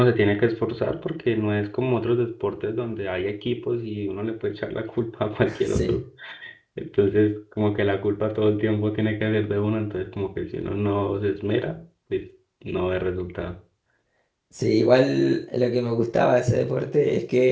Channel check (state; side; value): identical; both; correlation 1.00